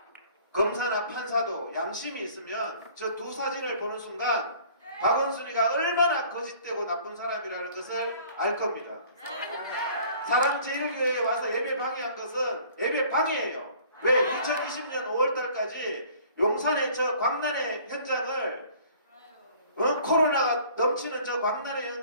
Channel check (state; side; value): inverted; both; correlation -0.52